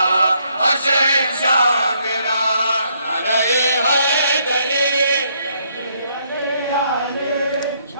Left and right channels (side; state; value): both; inverted; correlation -0.71